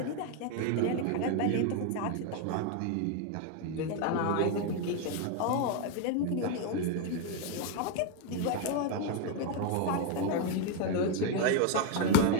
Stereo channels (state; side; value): different; both; correlation 0.01